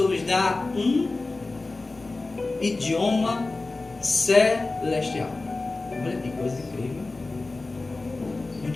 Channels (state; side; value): quieter; right; 3.4 dB